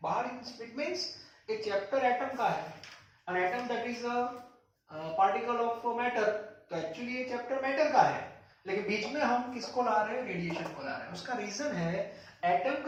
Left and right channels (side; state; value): both; identical; correlation 1.00